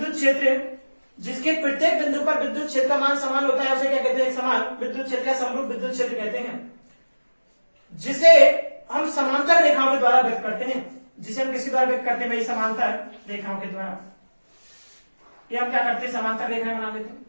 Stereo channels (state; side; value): inverted; both; correlation -1.00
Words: क्षेत्र जिसके प्रत्येक बिंदु पर विद्युत क्षेत्र का मान समान होता है, उसे क्या कहते हैं? एक समान विद्युत क्षेत्र या समरूप विद्युत क्षेत्र कहते हैं, जिसे हम समांतर रेखाओं के द्वारा व्यक्त करते हैं। जिसे हम किसी द्वारा व्यक्त करते हैं भाई? समांतर रेखाओं के द्वारा। ये हम क्या करते हैं? समांतर रेखाएं बना देते हैं।